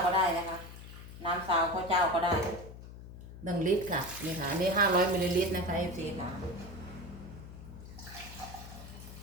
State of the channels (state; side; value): noise; left; hum, 14 dB below the sound